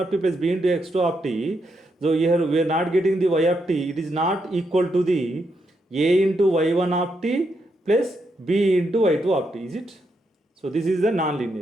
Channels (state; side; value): normal; both; correlation 0.80